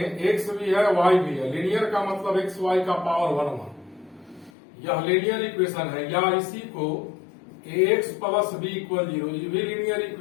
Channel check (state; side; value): drops out; right; at 4.5 s